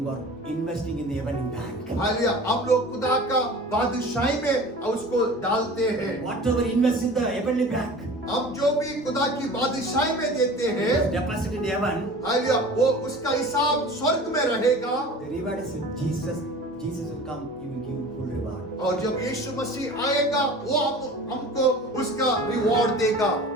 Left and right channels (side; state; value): both; normal; correlation 0.40